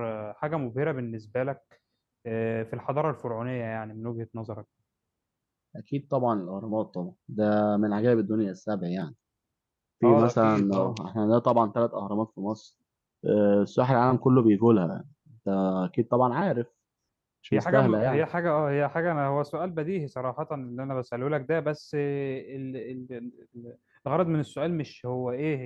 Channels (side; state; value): both; identical; correlation 1.00